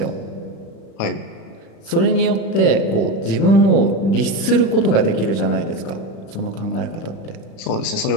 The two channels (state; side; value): late; right; 36 ms